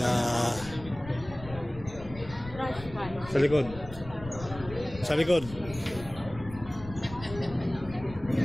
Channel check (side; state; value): left; noise; rumble, 14 dB below the sound